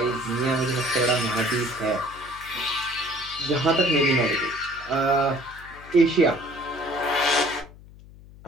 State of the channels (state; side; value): noise; left; hum, 20 dB below the sound